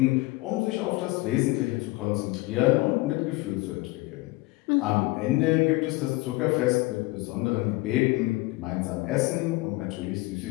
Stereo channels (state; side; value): quieter; right; 21.4 dB